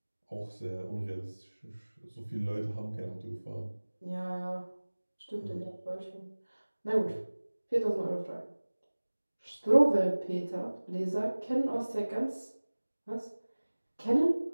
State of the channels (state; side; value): inverted; both; correlation -1.00